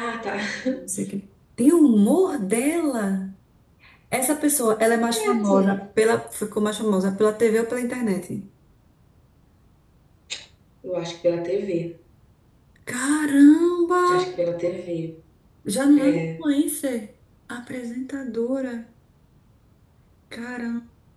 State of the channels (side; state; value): both; identical; correlation 1.00